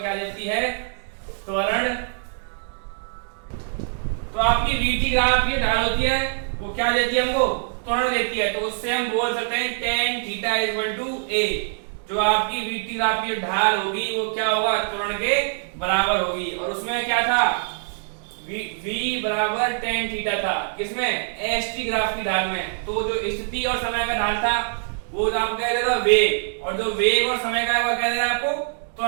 देती है? त्वरण। तो आपकी वीटी ग्राफ की ढाल होती है वो क्या देती है हमको? त्वरण देती है। तो उससे हम बोल सकते हैं tan theta equal to a। जो आपकी वीटी ग्राफ की ढाल होगी वो क्या होगा? त्वरण के बराबर होगी। और उसमें क्या था? v बराबर tan थीटा था। किसमें? एसटी ग्राफ की ढाल में। तो जो स्थिति और समय का ढाल था वो आपको कह दे रहा है वेग, और जो वेग और समय का है वो कह दे रहा है आपको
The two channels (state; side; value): silent; left; digital silence